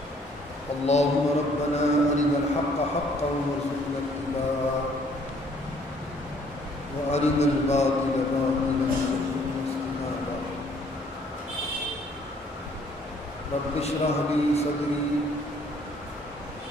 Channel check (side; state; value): both; normal; correlation 0.62